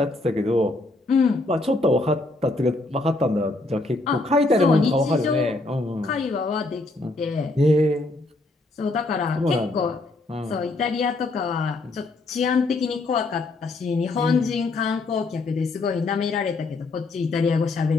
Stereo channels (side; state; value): right; quieter; 3.0 dB